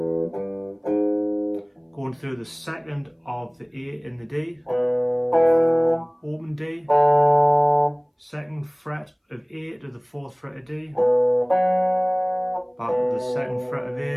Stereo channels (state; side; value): identical; both; correlation 1.00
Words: Going through the second of the A in the D. Open D. Second fret of A to the fourth fret of D. Back to the second fret of